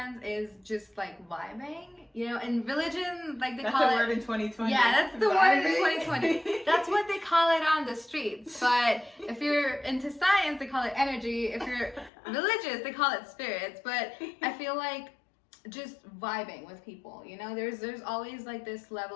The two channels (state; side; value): drops out; right; at 12.1 s